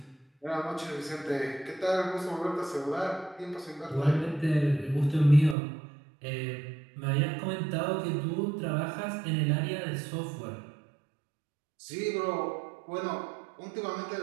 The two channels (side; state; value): left; drops out; at 5.6 s